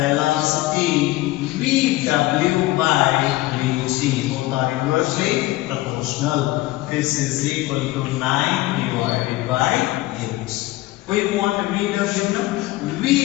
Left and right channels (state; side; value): quieter; right; 18.1 dB